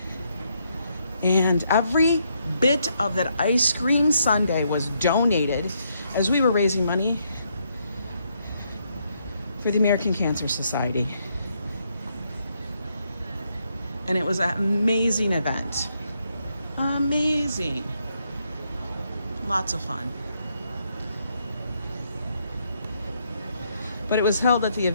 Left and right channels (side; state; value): both; inverted; correlation -0.76